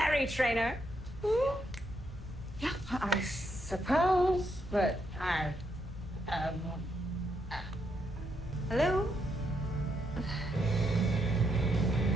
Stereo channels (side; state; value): both; normal; correlation 0.78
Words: Trainer. Yeah, I suppose, but I... Hello?